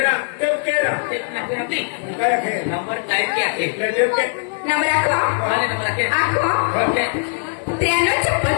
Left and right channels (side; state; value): right; silent; 55 dB below the other